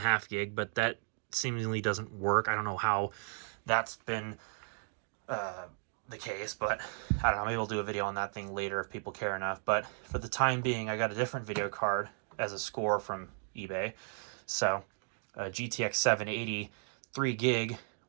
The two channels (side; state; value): left; silent; 55 dB below the other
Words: gig, but that seemingly doesn't work. I don't know how that's been the case, but I don't know, maybe we'll do a video on that thing later if people care enough. But for the time being, I got a different video card as a score from eBay. So a GTX 780 3 gig,